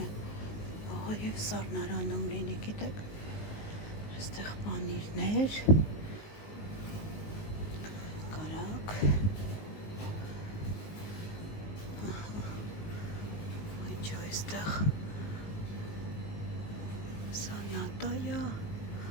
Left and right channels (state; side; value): late; right; 19 ms